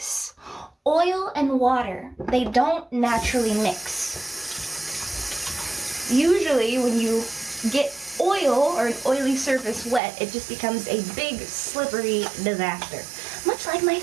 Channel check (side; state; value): left; drops out; at 10.0 s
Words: Oil and water, they don't naturally mix. Usually when you get oil or an oily surface wet, it just becomes a big slippery disaster, much like my